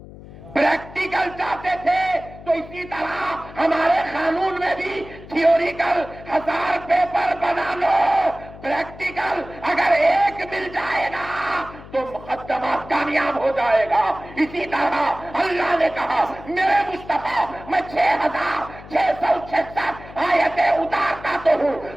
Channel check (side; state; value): left; noise; hum, 17 dB below the sound